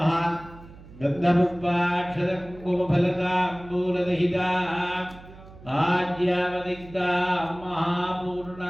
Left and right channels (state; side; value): noise; right; hum, 19 dB below the sound